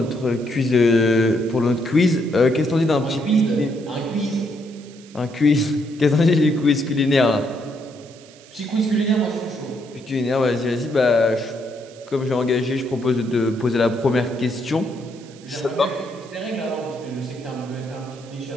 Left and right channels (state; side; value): noise; right; hiss, 24 dB below the sound